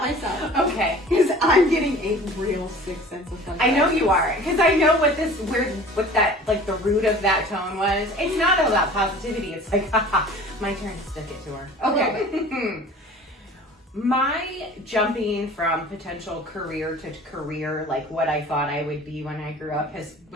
Okay. Because I'm getting a real sick sense of fun. I know you are, because I know what that, like, the root of that tone was. It's not about positivity. It's like, haha, my turn to stick it to her. Okay. My jumping from potential career to career, like what I thought I would be when I grew up,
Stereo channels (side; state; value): both; normal; correlation 0.44